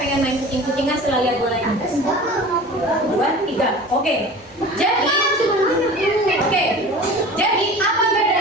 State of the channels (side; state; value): both; normal; correlation 0.39